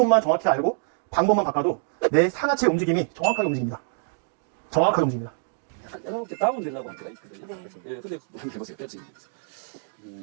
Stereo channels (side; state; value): left; silent; digital silence